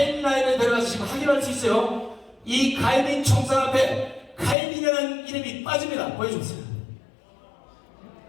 들어가서 지금 확인할 수 있어요. 이 카이민 총상 앞에 카이민이라는 이름이 빠집니다. 보여주세요.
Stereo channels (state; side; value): drops out; right; at 4.5 s